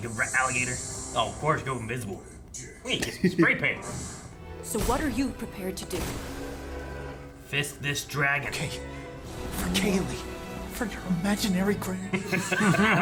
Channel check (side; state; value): both; identical; correlation 1.00